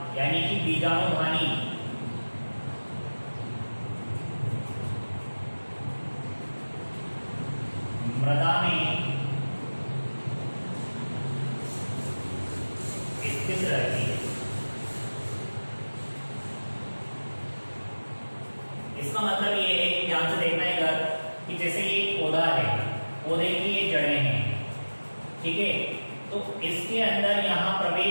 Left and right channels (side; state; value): both; inverted; correlation -1.00